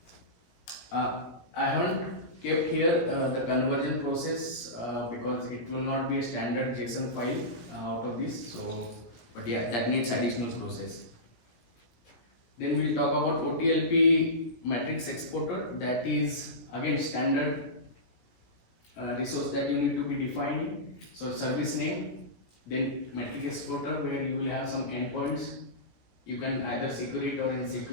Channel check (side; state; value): right; late; 17 ms